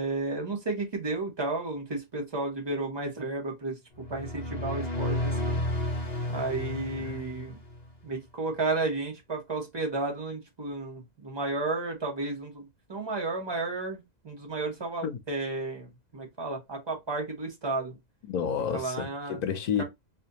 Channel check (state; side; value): late; right; 2.0 ms